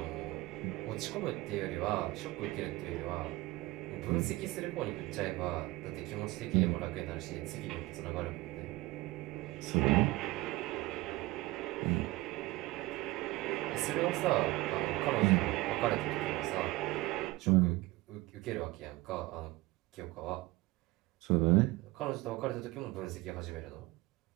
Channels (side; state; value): left; quieter; 20.1 dB